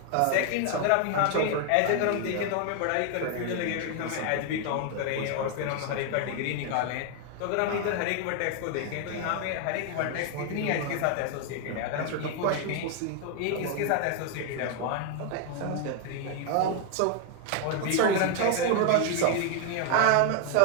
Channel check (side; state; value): both; different; correlation 0.00